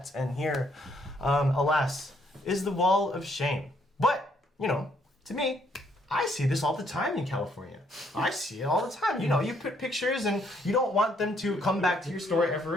And here, alas, is the wall of shame. But, you know, to me, I see this all the time in California. I see it all the time. You know, you put pictures and you don't want them to come back to your store ever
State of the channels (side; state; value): both; normal; correlation 0.69